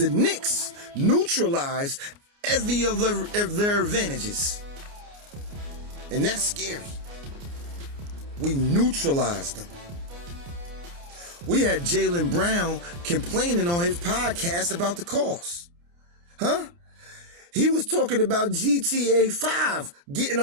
Knicks neutralized every of their advantages. And that's scary. We neutralized them. We had Jaylen Brown complaining on his podcast about the calls. Huh? He was talking about GTA 5 getting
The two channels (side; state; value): left; late; 29 ms